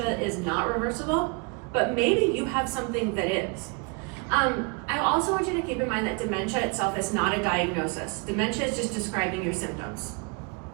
is not reversible, but maybe you have something that is. I also want you to keep in mind that dementia itself is not a diagnosis. Dementia is just describing your symptoms.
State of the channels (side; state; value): left; quieter; 31.2 dB